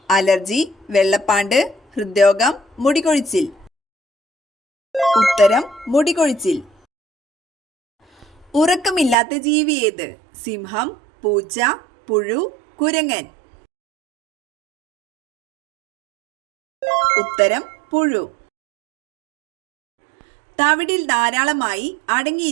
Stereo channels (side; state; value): left; drops out; at 9.2 s